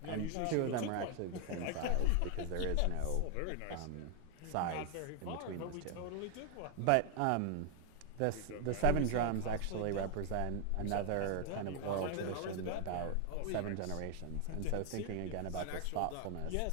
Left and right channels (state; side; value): different; both; correlation 0.00